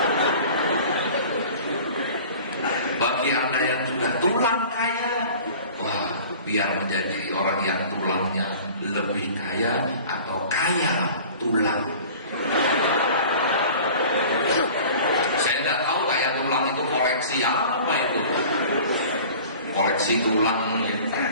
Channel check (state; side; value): inverted; both; correlation -0.43